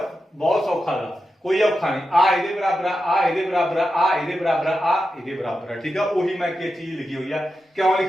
बहुत सौखा गा कोई औखा नहीं आ ਇਹਦੇ बराबर आ ਇਹਦੇ बराबर आ ਇਹਦੇ बराबर आ ਇਹਦੇ बराबर ठीक है ਉਹੀ ਮੈਂ ਕੀ ਚੀਜ਼ ਲਿਖੀ ਹੋਈ ਆ ਕਿਉਂ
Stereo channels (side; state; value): both; normal; correlation 0.89